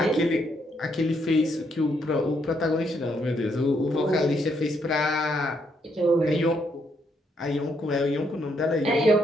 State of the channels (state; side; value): normal; both; correlation 0.74